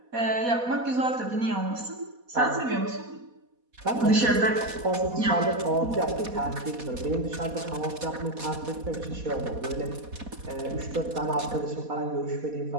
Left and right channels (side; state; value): left; late; 4.1 ms